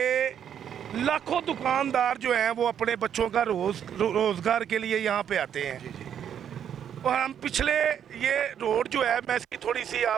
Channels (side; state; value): left; quieter; 8.9 dB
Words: لاکھوں دکاندار جو ہیں وہ اپنے بچوں کا روزگار کے لیے یہاں پہ آتے ہیں، اور ہم پچھلے یہ روڈ جو ہے، میں اس کی تھوڑی سی